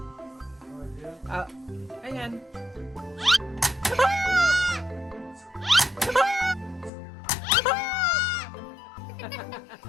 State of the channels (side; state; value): right; drops out; at 6.9 s